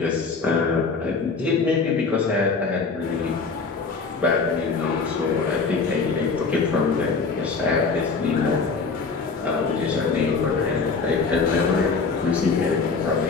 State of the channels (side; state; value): right; quieter; 4.6 dB